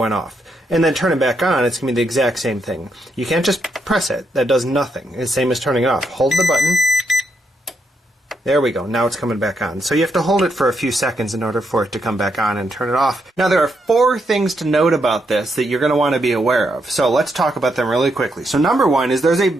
off. And then turn it back on, it's going to be the exact same thing. You can't just press it. That does nothing. It's the same as turning it off. Hold the button. There we go. Now it's coming back on. So you have to hold it for a few seconds in order for it to come back on and turn it off. Now there are 4 things to note about this that you're going to want to be aware of. So let's talk about them really quickly. So number 1 is there's a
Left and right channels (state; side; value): normal; both; correlation 0.79